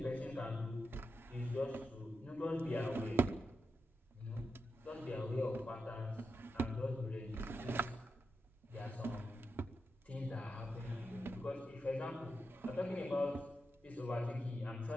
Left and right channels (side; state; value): both; normal; correlation 0.87